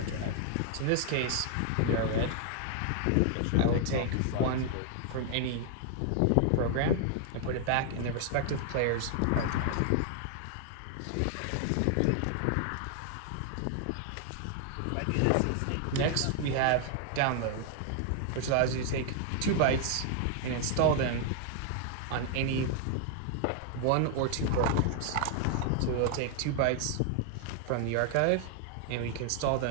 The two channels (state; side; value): different; both; correlation 0.00